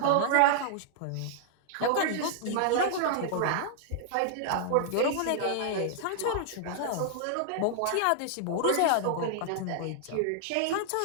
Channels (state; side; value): different; both; correlation -0.01